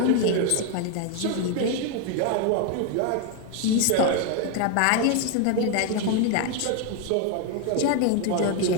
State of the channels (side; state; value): both; different; correlation 0.01